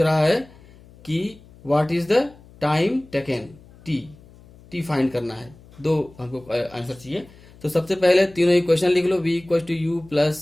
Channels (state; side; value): noise; left; hum, 24 dB below the sound